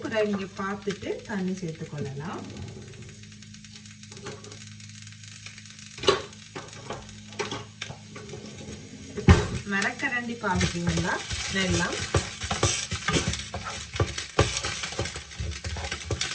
பிறகு நீங்கள் பார்த்துட்டு தண்ணி சேர்த்துக்கொள்ளலாம். மரக்கரண்டி பார்த்துட்டீங்கன்னா வெல்லம்,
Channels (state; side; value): identical; both; correlation 1.00